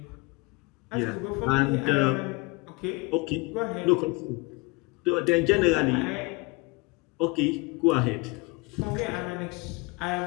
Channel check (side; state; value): right; quieter; 26.1 dB